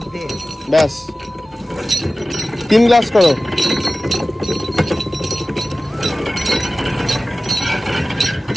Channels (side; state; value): both; normal; correlation 0.96